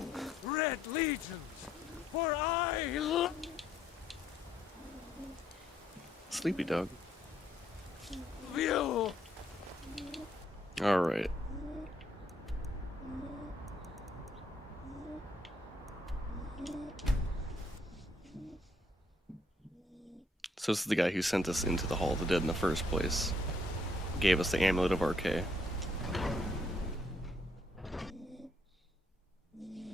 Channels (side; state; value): both; normal; correlation 0.70